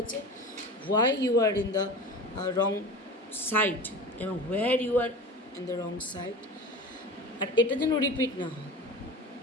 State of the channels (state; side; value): normal; both; correlation 0.33